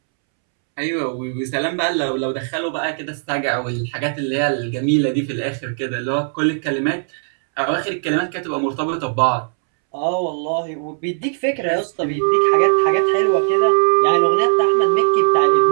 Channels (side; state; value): left; silent; 67 dB below the other